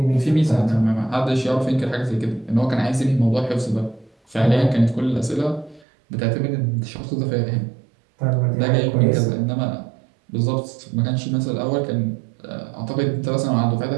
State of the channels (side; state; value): left; drops out; at 5.8 s